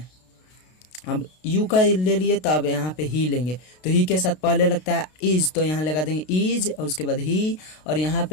अब यू का ले लिए तो अब यहाँ पे ही लेंगे, तो ही के साथ पहले लगता है इज, तो यहाँ लगा देंगे इज और उसके बाद ही, और यहाँ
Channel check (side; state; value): right; late; 32 ms